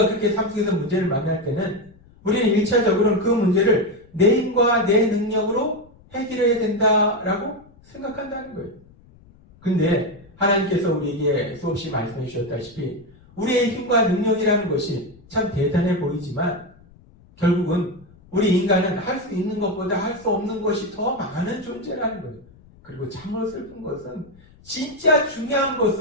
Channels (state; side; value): noise; left; rumble, 26 dB below the sound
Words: 그렇게 삶 속에서 문제를 만날 때는 우리는 1차적으로는 그 문제를 내 힘과 내 능력으로 해결해야 된다라고 생각한다는 거예요. 근데 하나님께서 우리에게 수없이 말씀해 주셨다시피 우리의 힘과 능력이라는 것이 참 대단해 보이지만 결국은 우리 인간은 할 수 있는 것보다 할 수 없는 것이 더 많은 존재라는 거예요. 그리고 참으로 슬픈 것은 진짜 중요한